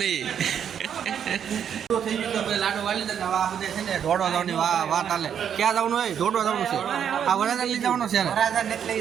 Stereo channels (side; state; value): left; quieter; 8.5 dB